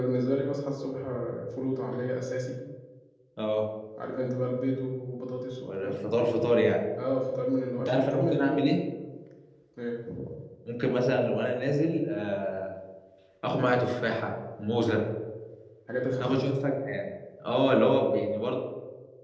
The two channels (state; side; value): identical; both; correlation 1.00